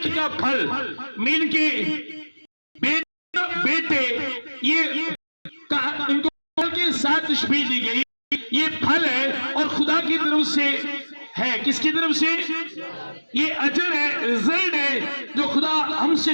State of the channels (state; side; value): inverted; both; correlation -1.00